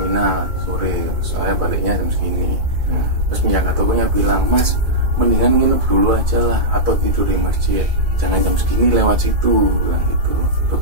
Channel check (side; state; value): left; late; 2.3 ms